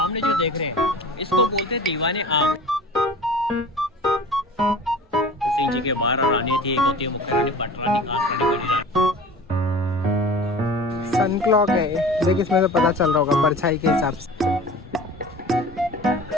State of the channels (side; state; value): both; normal; correlation 0.40